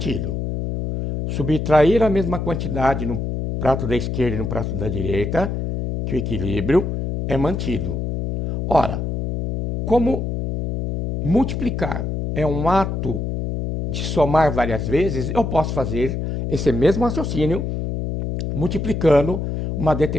Subtrair a mesma quantidade no prato da esquerda e no prato da direita, que o equilíbrio é mantido. Ora, como multiplicar é um ato de somar várias vezes, eu posso fazer esse mesmo raciocínio multiplicando uma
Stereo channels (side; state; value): left; noise; hum, 2 dB below the sound